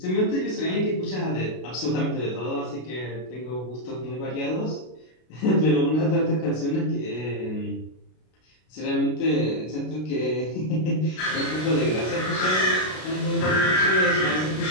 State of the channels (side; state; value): right; late; 32 ms